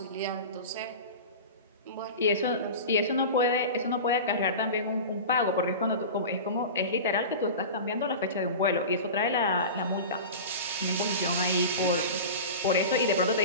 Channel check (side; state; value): both; inverted; correlation -0.30